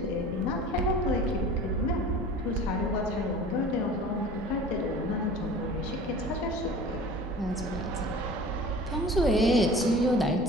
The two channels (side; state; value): both; normal; correlation 0.42